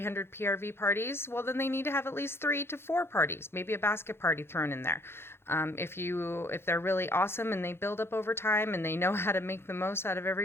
PRV parties. Well, then they need to have at least 3 to 4 parties, maybe a basket party thrown in there. If they're really awesome and they build up over time and they know how to make the most out of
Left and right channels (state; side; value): late; right; 0.12 ms